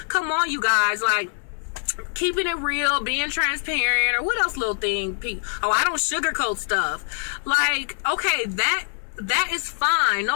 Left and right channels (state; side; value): silent; right; 63 dB below the other